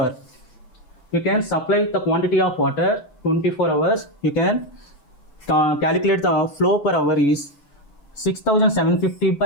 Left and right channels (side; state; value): right; late; 7.9 ms